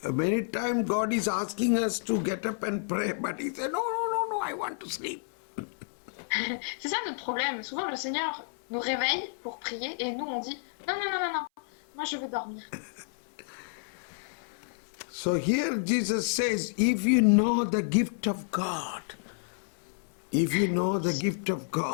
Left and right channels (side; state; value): right; silent; 58 dB below the other